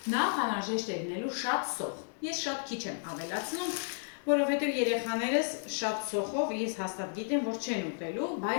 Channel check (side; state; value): right; silent; digital silence